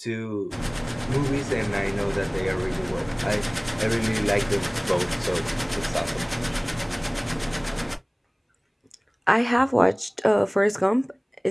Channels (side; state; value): both; identical; correlation 1.00